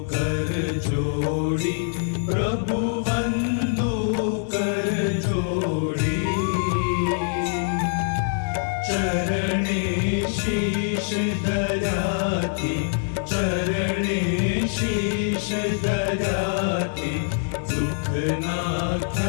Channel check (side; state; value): right; silent; digital silence